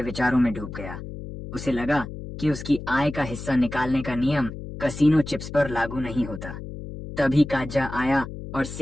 विचारों में डूब गया। उसे लगा कि उसकी आय का हिस्सा निकालने का नियम कसीनो चिप्स पर लागू नहीं होता। तभी काजा आया और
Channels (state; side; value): noise; left; hum, 10 dB below the sound